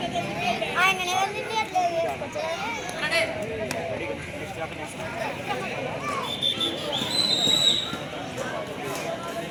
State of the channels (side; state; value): both; identical; correlation 1.00